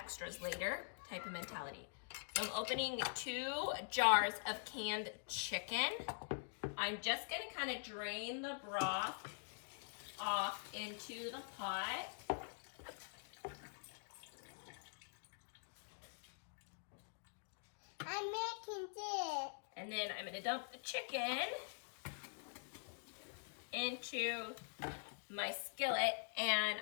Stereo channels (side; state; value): right; silent; digital silence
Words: later type of mentality. So I'm opening 2 jars of canned chicken. I'm just going to kind of drain the broth off into the pot. I'm making this. And then I'm going to dump the chicken into my skillet, and